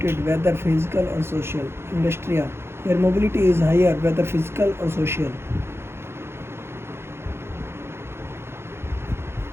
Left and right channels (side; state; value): left; late; 0.12 ms